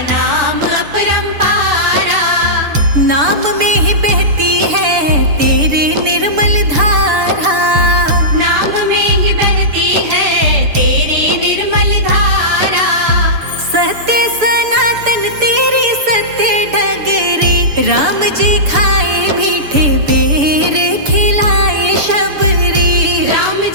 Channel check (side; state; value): left; late; 6.9 ms